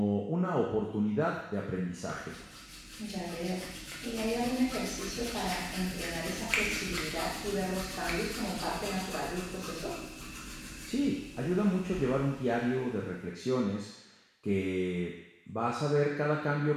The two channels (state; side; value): identical; both; correlation 1.00